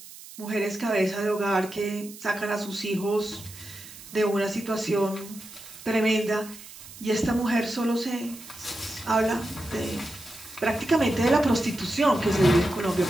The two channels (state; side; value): noise; right; hiss, 16 dB below the sound